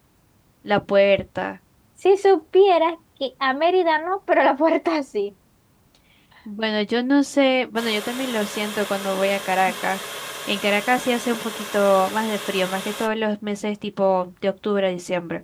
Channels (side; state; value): both; identical; correlation 1.00